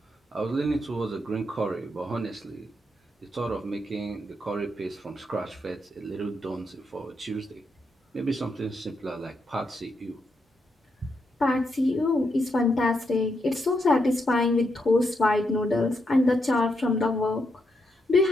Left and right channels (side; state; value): both; normal; correlation 0.81